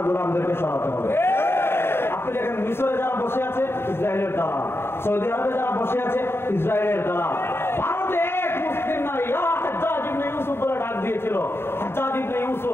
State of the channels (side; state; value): right; late; 0.11 ms